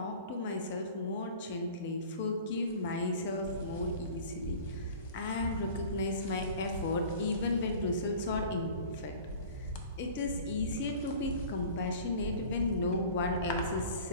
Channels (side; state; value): both; inverted; correlation -0.43